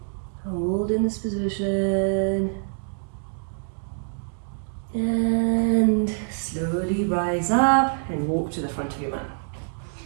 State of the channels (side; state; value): left; silent; digital silence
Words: Hold in this position. And slowly rise up and walk to the front of your mat